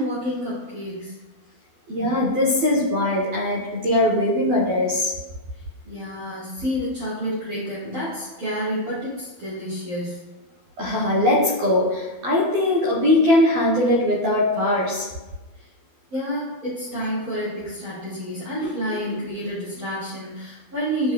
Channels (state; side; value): late; left; 12 ms